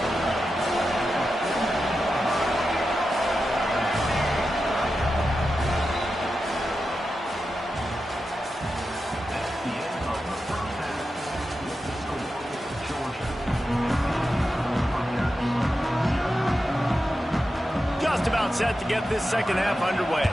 Just about set to get this second half underway.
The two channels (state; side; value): normal; both; correlation 0.90